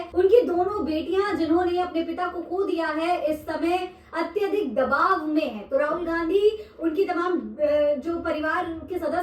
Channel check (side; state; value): both; identical; correlation 1.00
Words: उनकी दोनों बेटियां जिन्होंने अपने पिता को खो दिया है, इस समय अत्यधिक दबाव में है। तो राहुल गांधी उनकी तमाम जो परिवार के